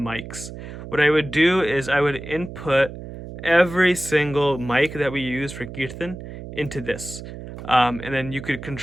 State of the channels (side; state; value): right; noise; hum, 11 dB below the sound